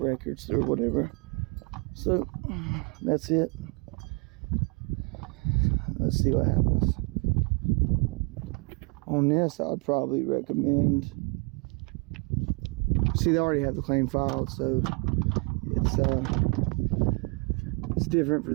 or whatever. So that's it. Let's see what happens. On this, I'd probably recommend, see, they already have the claim filed, so it's different for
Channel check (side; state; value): left; quieter; 33.1 dB